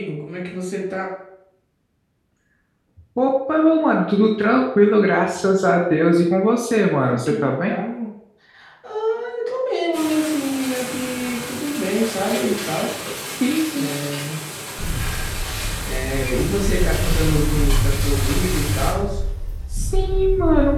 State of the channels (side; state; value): both; identical; correlation 1.00